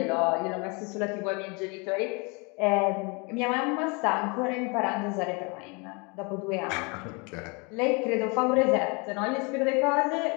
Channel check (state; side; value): quieter; right; 30.7 dB